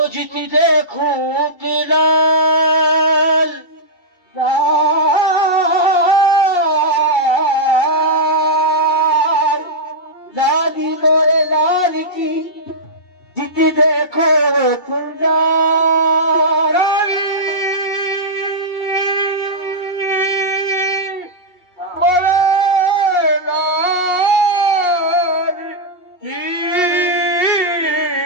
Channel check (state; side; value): late; right; 2.7 ms